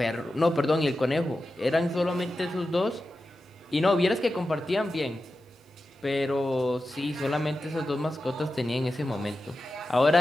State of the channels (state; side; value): normal; both; correlation 0.92